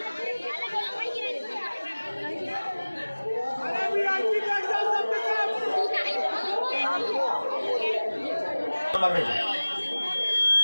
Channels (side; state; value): both; inverted; correlation -1.00